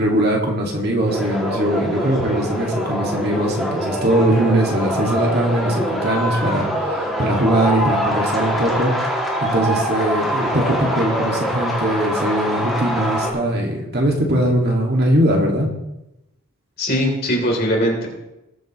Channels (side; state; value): both; normal; correlation 0.55